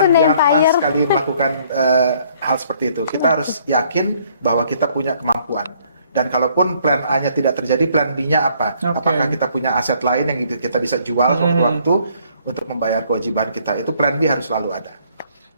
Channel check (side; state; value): both; inverted; correlation -0.64